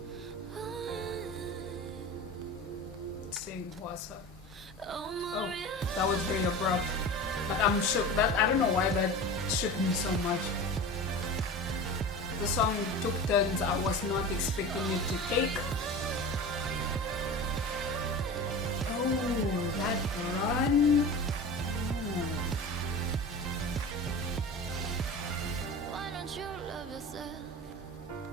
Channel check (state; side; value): normal; both; correlation 0.32